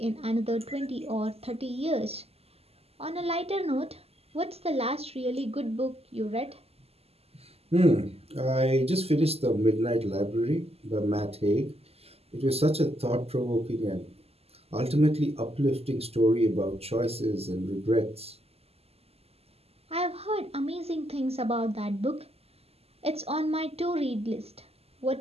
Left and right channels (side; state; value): left; late; 0.29 ms